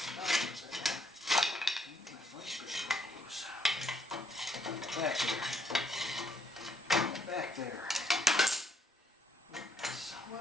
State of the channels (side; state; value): both; normal; correlation 0.70